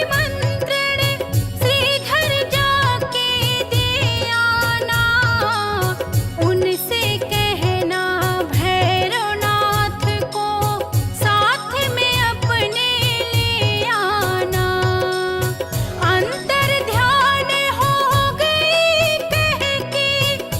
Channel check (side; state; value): both; identical; correlation 1.00